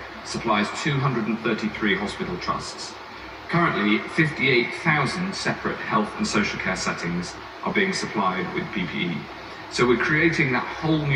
supplies 233 hospital trusts. Currently, 58,000 separate health and social care settings are being supplied with PPE. So we're creating that whole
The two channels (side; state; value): both; identical; correlation 1.00